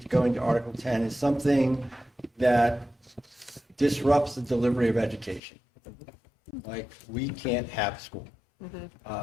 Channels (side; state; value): right; drops out; at 5.4 s